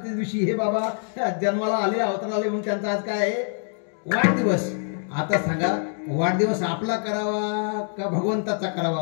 दिवशी हे बाबा जन्माला आले, अवतार आले म्हणून त्यांचा आज काय आहे वाढदिवस. आता सांगा वाढदिवस आपला करावा का भगवंताचा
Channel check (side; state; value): right; silent; 62 dB below the other